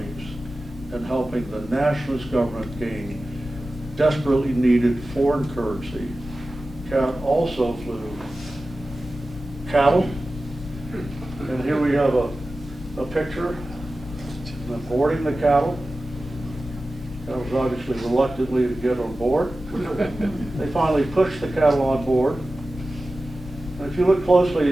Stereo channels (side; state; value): both; normal; correlation 0.95